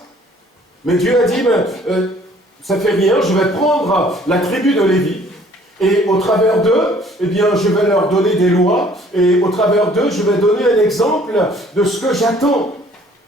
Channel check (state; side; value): normal; both; correlation 0.57